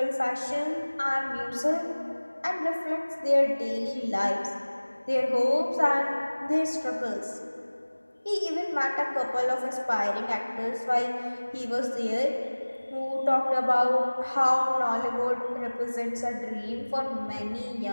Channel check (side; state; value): both; inverted; correlation -1.00